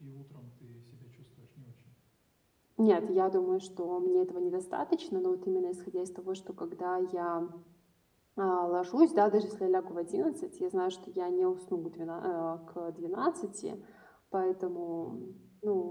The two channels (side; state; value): both; identical; correlation 1.00